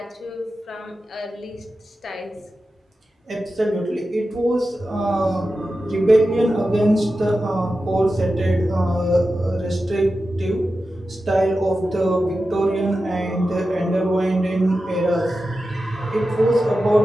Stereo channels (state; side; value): normal; both; correlation 0.92